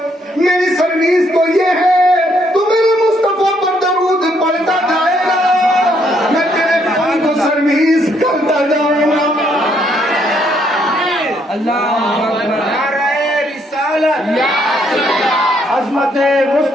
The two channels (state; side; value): normal; both; correlation 0.71